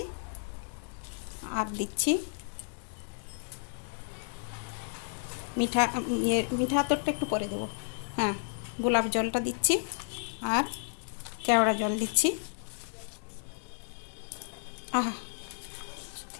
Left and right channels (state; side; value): silent; right; digital silence